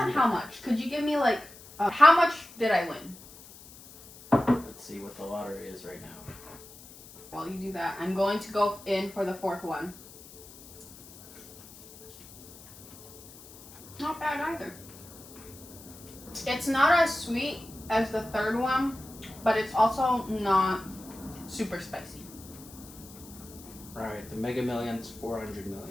how much. Could you give me like, how much did I win? Let's see what the lottery is right now. While you do that, I'm going to go in for the fourth one. Not bad either. It's not as sweet as the third one, but it's also not super spicy. Alright, the Mega Million's 400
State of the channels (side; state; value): left; noise; hiss, 19 dB below the sound